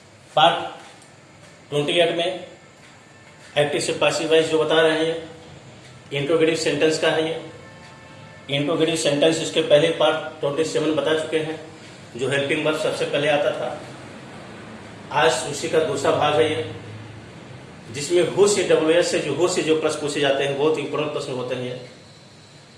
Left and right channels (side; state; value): both; identical; correlation 1.00